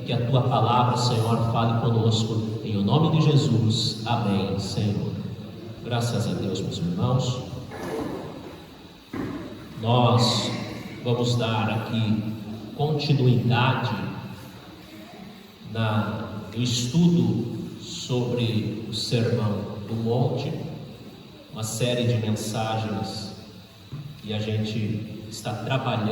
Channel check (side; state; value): both; identical; correlation 1.00